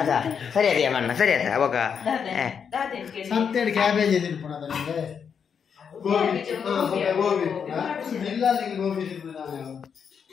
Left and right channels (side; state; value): right; quieter; 7.0 dB